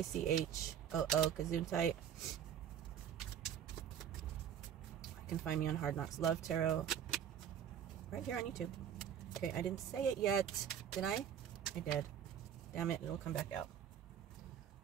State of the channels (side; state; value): left; quieter; 9.1 dB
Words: Gesundheit. You can find me on Hard Knocks Love Tarot. Right here on YouTube. Okay, I didn't say it yet. Did I? I did. Damn it, it'll come back out.